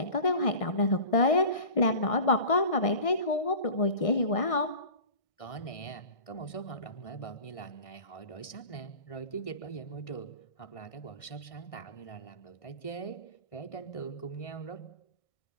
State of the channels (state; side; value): late; right; 1.6 ms